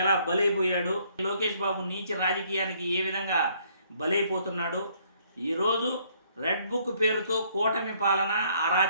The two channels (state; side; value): inverted; both; correlation -0.65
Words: ఎలా బలైపోయాడు, లోకేష్ బాబు నీచ రాజకీయానికి ఏ విధంగా బలైపోతున్నాడు. ఈరోజు రెడ్ బుక్ పేరుతో కూటమి పాలన